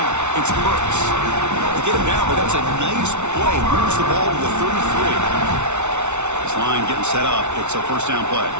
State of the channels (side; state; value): left; late; 0.82 ms